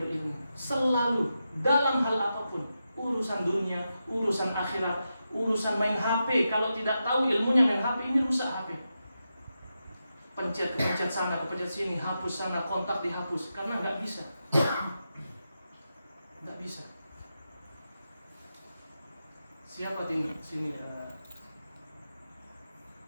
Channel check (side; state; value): both; inverted; correlation -0.88